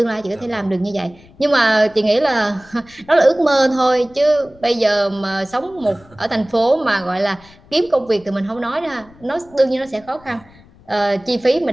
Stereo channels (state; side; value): noise; left; rumble, 26 dB below the sound